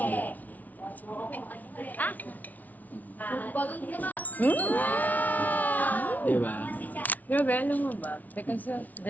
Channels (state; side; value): late; right; 0.076 ms